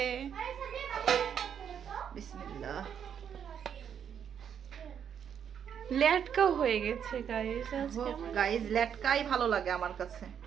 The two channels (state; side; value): quieter; left; 8.3 dB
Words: বিসমিল্লাহ। লেটকা হয়ে গেছে গাইস আজকে আমার। গাইস লেটকাই ভালো লাগে আমার কাছে।